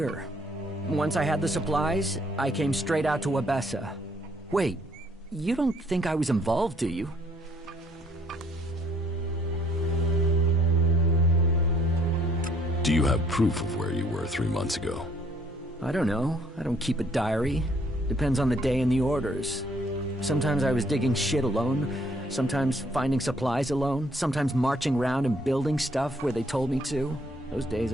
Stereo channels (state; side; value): normal; both; correlation 0.64